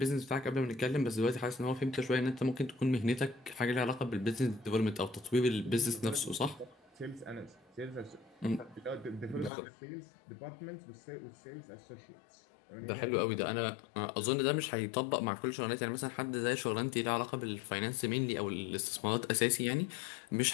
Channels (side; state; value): right; drops out; at 9.5 s